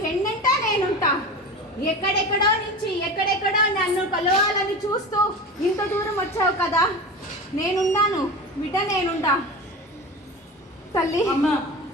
వెన్నంట నేనుంటా. ఎక్కడెక్కడో నుంచి ఎక్కడెక్కడో నన్ను కలవాలని చూస్తూ ఇంత దూరం వచ్చావు కదా, నేనున్నాను బిడ్డ, నేనుంటా. తల్లి అమ్మా,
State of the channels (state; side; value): normal; both; correlation 0.30